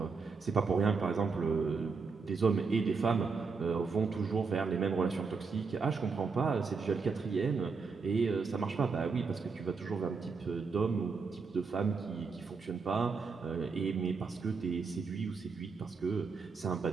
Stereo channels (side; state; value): left; quieter; 4.9 dB